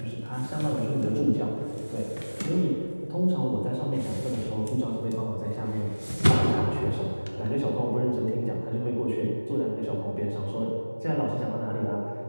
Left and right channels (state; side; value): inverted; both; correlation -1.00